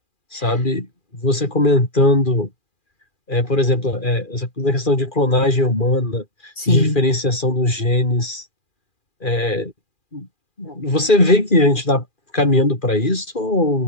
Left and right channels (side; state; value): right; late; 2.4 ms